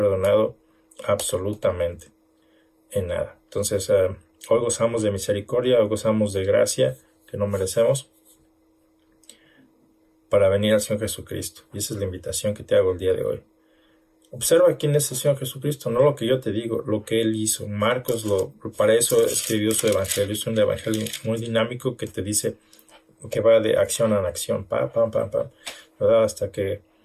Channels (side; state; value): both; identical; correlation 1.00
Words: absolutamente en nada. Entonces, hoy gozamos de misericordia, hoy gozamos de gracia que no merecemos para venir al Señor Jesucristo. Y esa es la invitación que te hago el día de hoy. Observa quién es el Señor Jesucristo, no lo que yo te digo, lo que Él hizo. Marcos para eso escribió su evangelio. Es un evangelio muy dinámico que te dice que va de acción en acción, pam, pam, pam, pam, ¿verdad? Hasta que